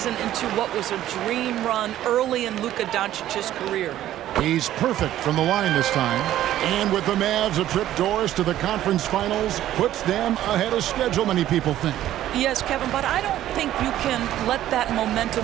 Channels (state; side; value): quieter; left; 12.9 dB